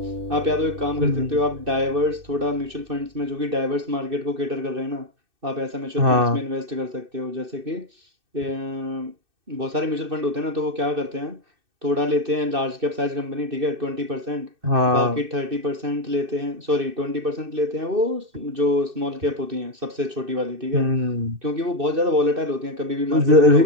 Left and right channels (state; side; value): late; left; 2.6 ms